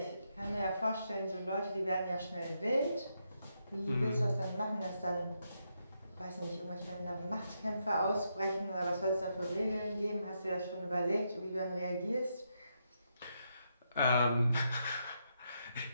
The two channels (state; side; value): inverted; both; correlation -0.81